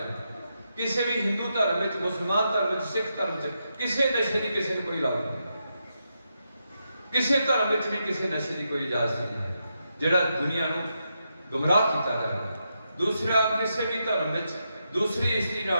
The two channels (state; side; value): inverted; both; correlation -0.84